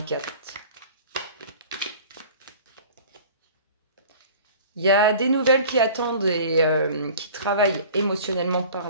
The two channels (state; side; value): inverted; both; correlation -0.44